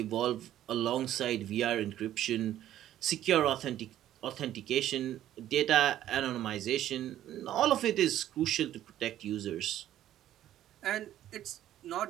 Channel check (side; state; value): left; quieter; 12.4 dB